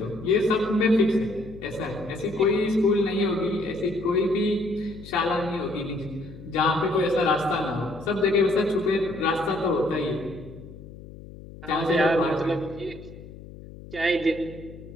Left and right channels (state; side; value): noise; left; hum, 16 dB below the sound